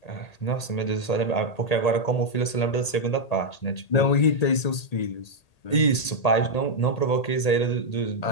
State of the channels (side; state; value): right; late; 1.8 ms